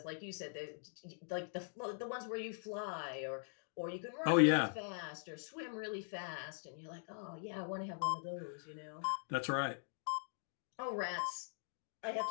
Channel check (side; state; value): right; silent; digital silence